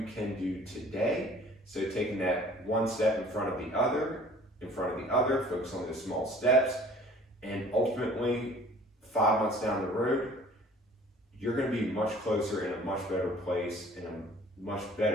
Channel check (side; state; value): both; normal; correlation 0.50